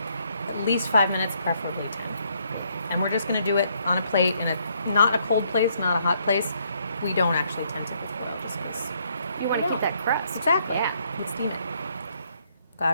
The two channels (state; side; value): inverted; both; correlation -0.70